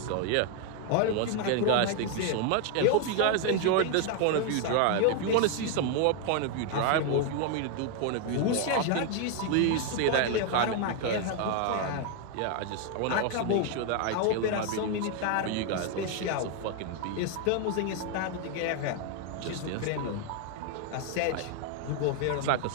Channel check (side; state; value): both; different; correlation 0.00